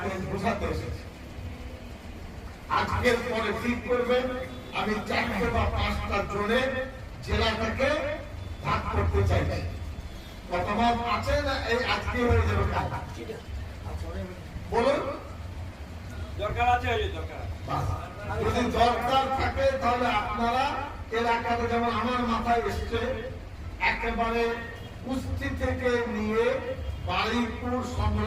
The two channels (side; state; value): both; identical; correlation 1.00